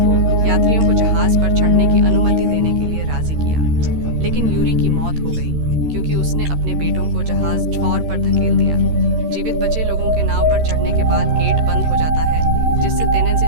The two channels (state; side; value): late; left; 13 ms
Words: को यात्रियों को जहाज पर चढ़ने की अनुमति देने के लिए राजी किया, लेकिन यूरी की मौत हो गई क्योंकि उसने अपने बेटों को जहाज ठौर पर धकेल दिया। जीवित बचे लोगों के नाव पर चढ़ने के बाद गेट बंद हो जाता है, जिससे